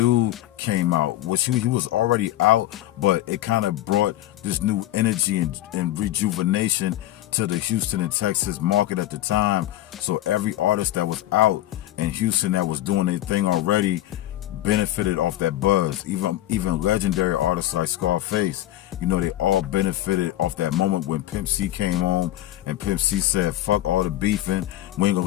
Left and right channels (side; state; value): right; quieter; 14.4 dB